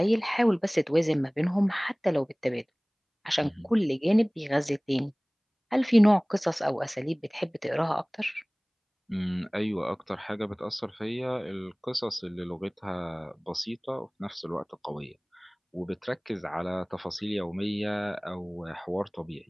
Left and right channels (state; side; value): identical; both; correlation 1.00